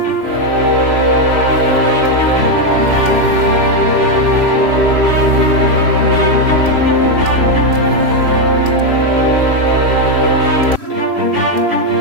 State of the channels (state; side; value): late; left; 3.1 ms